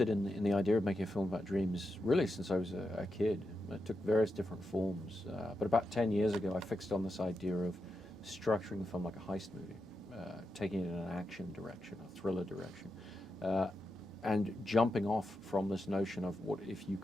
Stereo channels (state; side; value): normal; both; correlation 0.87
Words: in the idea of making a film about dreams really since I was a kid. It took various different forms, but about 10 years ago I fixed on this idea of structuring the film like a heist movie, taking it in an action direction, a thriller direction, and jumping off from this notion of what if you